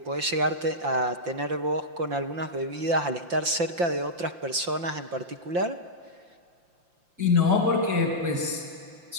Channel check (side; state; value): left; late; 5.8 ms